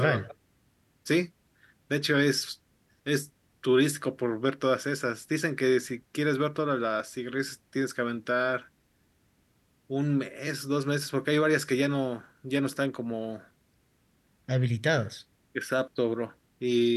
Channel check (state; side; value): identical; both; correlation 1.00